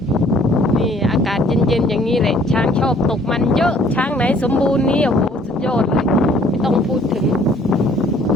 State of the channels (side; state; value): both; normal; correlation 0.58